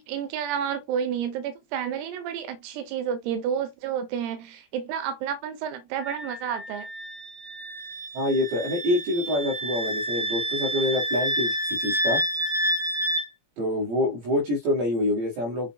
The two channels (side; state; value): left; late; 17 ms